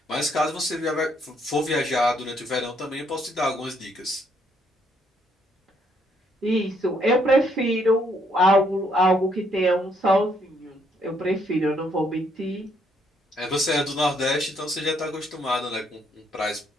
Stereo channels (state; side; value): normal; both; correlation 0.71